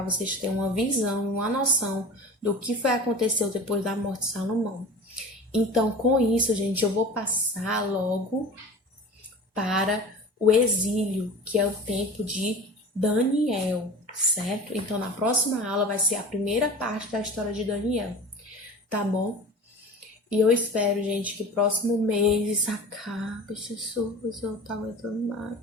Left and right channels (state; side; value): normal; both; correlation 0.36